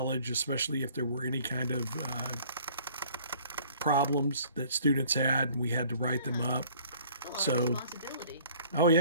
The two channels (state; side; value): inverted; both; correlation -0.54